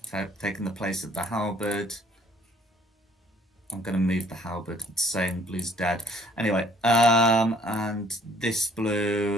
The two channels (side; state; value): both; normal; correlation 0.59